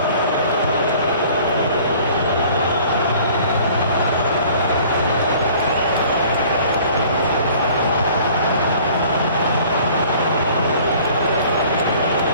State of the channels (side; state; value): both; inverted; correlation -0.51